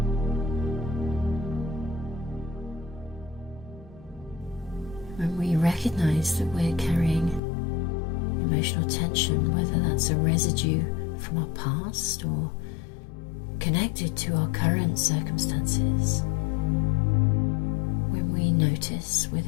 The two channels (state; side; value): drops out; right; at 7.4 s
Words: When we recognize that we're carrying emotional tension, whether that's a residue from our past or connected to our current circumstances, when we notice